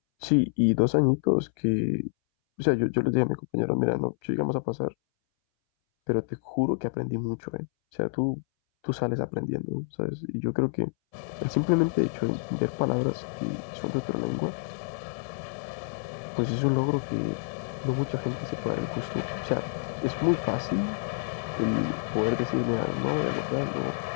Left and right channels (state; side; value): silent; right; 59 dB below the other